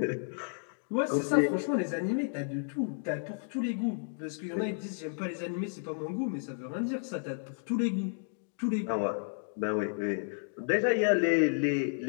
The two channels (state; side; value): silent; right; digital silence